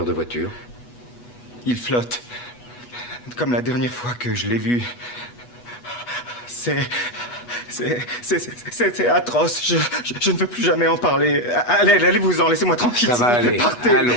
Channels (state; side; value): late; right; 8.2 ms